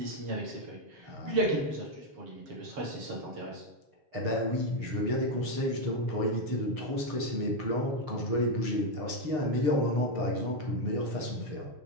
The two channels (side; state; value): left; late; 6.7 ms